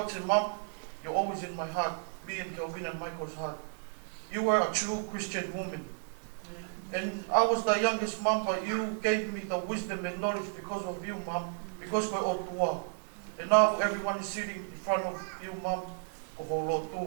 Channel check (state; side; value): silent; left; digital silence